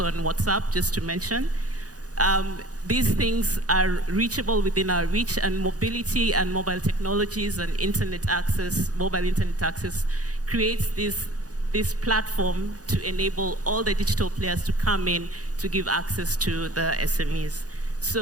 WhatsApp, just to mention. These things are reachable within our reach, and mobility and mobile technologies and internet access, mobile internet access, creates this platform to enable all the digital players to come in to give access to the SMEs.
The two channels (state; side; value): late; left; 0.67 ms